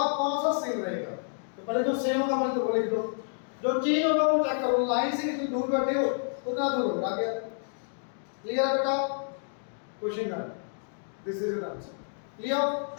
कौन सा सेम रहेगा। तो पहले जो सेम होगा पहले तो वो लिख दो, जो चेंज होगा वो चेक करो, लाइन से कितनी दूर बैठे हो उतना दूर होगा क्या। क्लियर है बेटा? क्वेश्चन है, this is an answer. Clear?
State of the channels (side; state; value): right; silent; digital silence